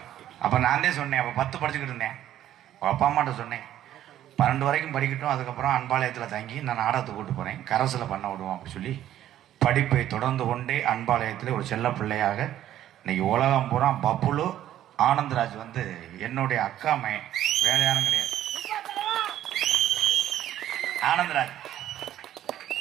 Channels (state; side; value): quieter; left; 12.1 dB